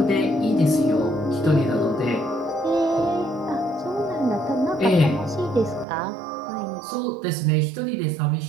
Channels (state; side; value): drops out; left; at 5.9 s